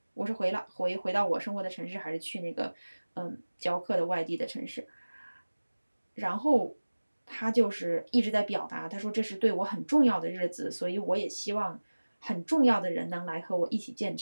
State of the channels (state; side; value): inverted; both; correlation -1.00